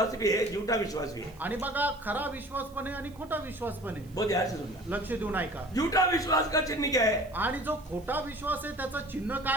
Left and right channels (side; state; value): right; noise; hiss, 27 dB below the sound